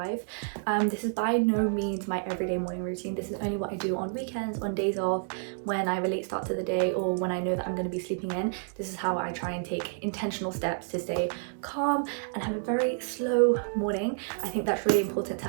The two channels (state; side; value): silent; left; digital silence